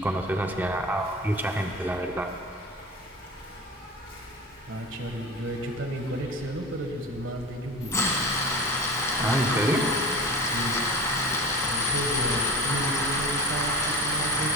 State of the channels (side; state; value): both; normal; correlation 0.32